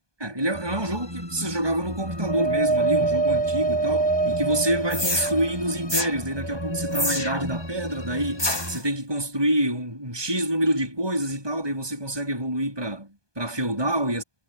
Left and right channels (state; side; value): late; left; 1.2 ms